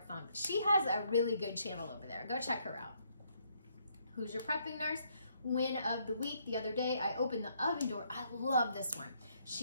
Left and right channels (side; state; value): both; inverted; correlation -0.71